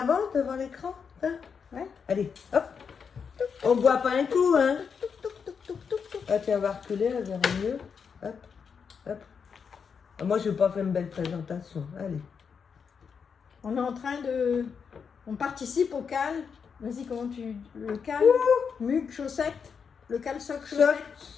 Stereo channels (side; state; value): right; quieter; 6.3 dB